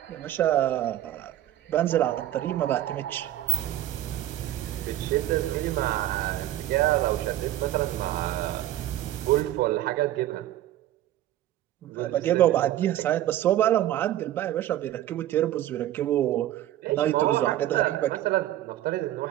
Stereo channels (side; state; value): left; quieter; 13.5 dB